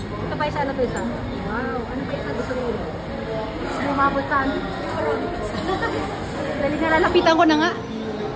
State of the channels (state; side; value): identical; both; correlation 1.00